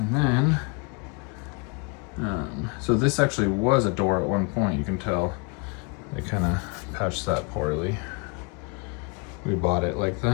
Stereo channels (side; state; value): right; quieter; 30.4 dB